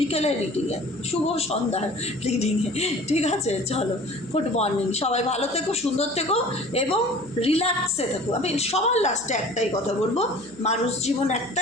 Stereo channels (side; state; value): right; noise; hum, 26 dB below the sound